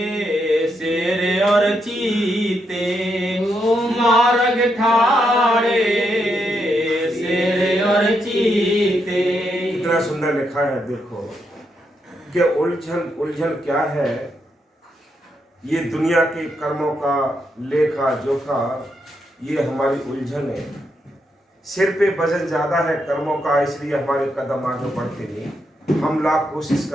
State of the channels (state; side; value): normal; both; correlation 0.81